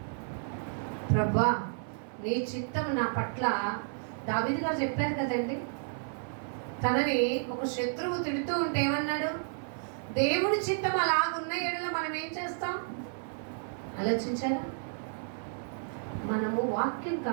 ప్రభా నీ చిత్తం నా పట్ల, దావీదు గారు చెప్పారు కదండి, తనని ఒక శత్రువు తిడుతూ ఉంటే ఏమన్నాడు, దేవుడి చిత్తం అలాగున్న ఏళ్ళలో మనం ఏం చేస్తాం. ఆలోచించారా? మనము వాక్యం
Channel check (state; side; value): silent; left; 57 dB below the other